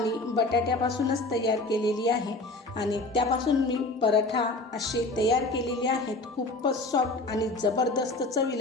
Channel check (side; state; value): right; quieter; 3.0 dB